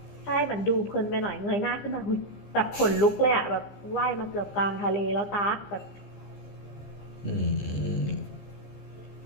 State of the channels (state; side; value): late; right; 15 ms